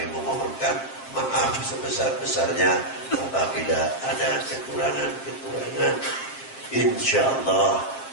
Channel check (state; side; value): late; right; 7.5 ms